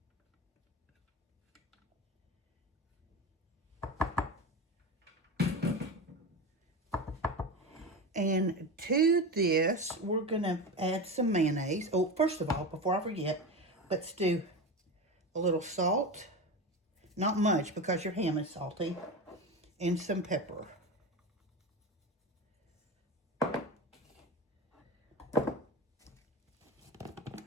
And to this, we're going to add some mayonnaise. Oh, first of all, before I forget, let's do a little salt. Not much because your ham is salty. And some pepper.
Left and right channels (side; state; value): both; normal; correlation 0.23